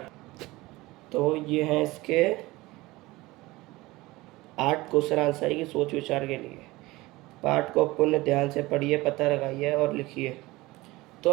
तो ये हैं इसके 8 क्वेश्चन आंसर की सोच विचार के लिए। पाठ को पुनः ध्यान से पढ़िए, पता लगाइए और लिखिए।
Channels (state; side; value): quieter; left; 20.2 dB